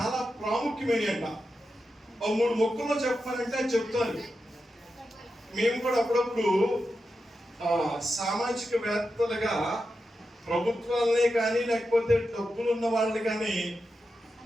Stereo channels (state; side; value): normal; both; correlation 0.89